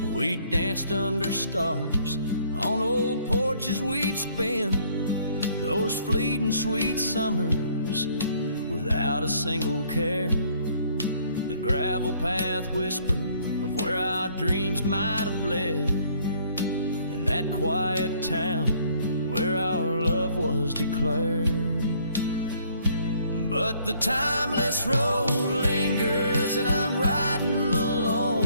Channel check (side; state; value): both; inverted; correlation -0.63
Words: We danced under stars on old porches we'd spend those fleeting sweet summers without a single care. The gravel path whispered of where our dreams might have led, in that quiet town where our love was declared. But the timeless road lingers and I'm riding